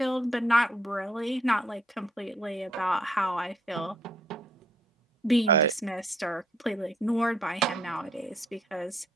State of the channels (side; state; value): both; normal; correlation 0.66